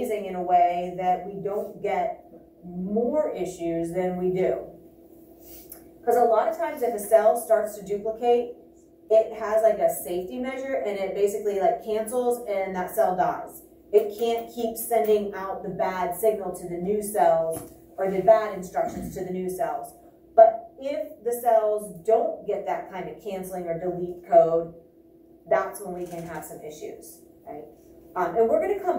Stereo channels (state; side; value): identical; both; correlation 1.00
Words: in a way that we don't get more issues than we do. Because a lot of times if a cell starts to duplicate, it has like a safety measure and it basically like cancels and that cell dies. It can't keep sending out the bad signal to the new cells or the bad instructions to the new cells. But if the cells don't get that kind of canceling or delete code, that's when we can have some issues, right? And we're going to